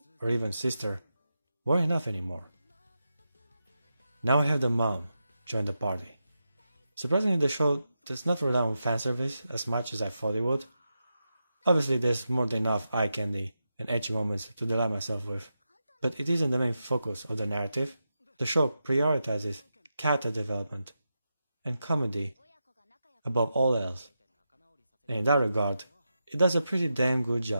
or even sister weren't enough anymore. Now I have the mom join the party. Surprisingly, the show does not rely on fanservice as much as I thought it would. Obviously, there's more than enough eye candy and ecchi moments to delight myself with, but it isn't the main focus of the narrative. The show prioritizes character development and comedy above all else, and in that regard, it does a pretty damn good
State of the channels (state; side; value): inverted; both; correlation -0.88